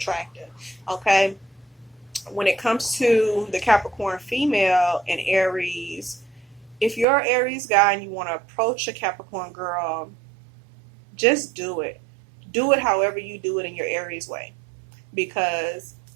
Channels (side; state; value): left; drops out; at 7.1 s